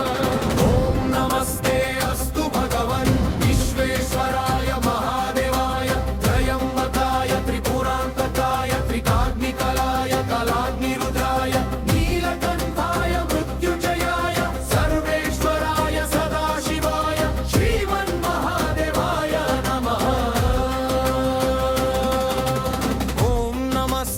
ॐ नमस्ते अस्तु भगवन् विश्वेश्वराय महादेवाय त्रयंबकाय त्रिपुरान्तकाय त्रिकाग्निकालाय कालाग्निरुद्राय नीलकण्ठाय मृत्युञ्जयाय सर्वेश्वराय सदाशिवाय श्रीमन्महादेवाय नमः। ॐ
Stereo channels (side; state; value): both; identical; correlation 1.00